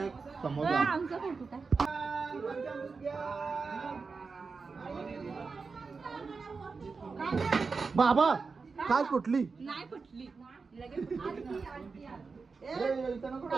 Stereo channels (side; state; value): left; quieter; 4.6 dB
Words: समोसा आमचा फोटो काय बाबा काय कुठली नाही फुटली